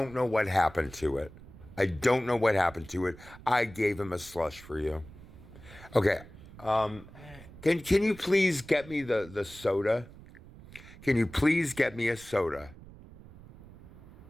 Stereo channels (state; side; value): noise; right; rumble, 19 dB below the sound